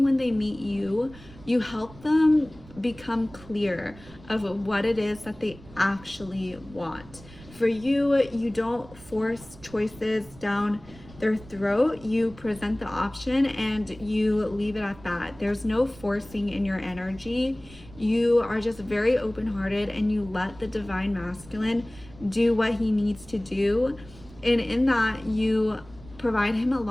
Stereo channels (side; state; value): right; noise; rumble, 20 dB below the sound